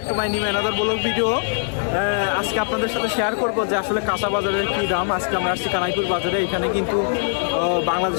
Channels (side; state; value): right; silent; 64 dB below the other